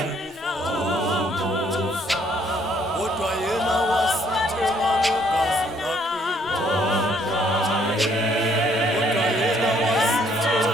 Kodwa yena wasithenga ngegazi lakhe. Kodwa yena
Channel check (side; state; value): both; normal; correlation 0.66